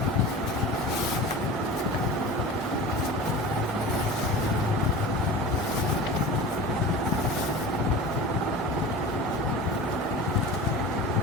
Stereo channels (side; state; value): both; normal; correlation 0.34